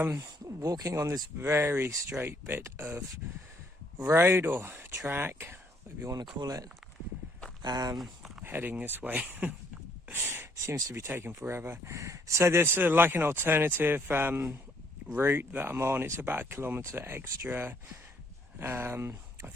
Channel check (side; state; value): both; normal; correlation 0.66